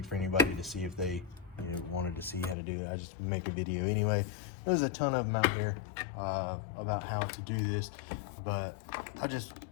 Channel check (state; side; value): drops out; right; at 2.6 s